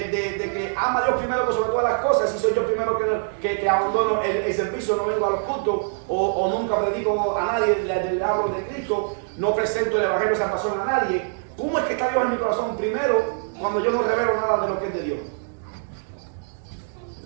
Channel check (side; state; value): left; silent; digital silence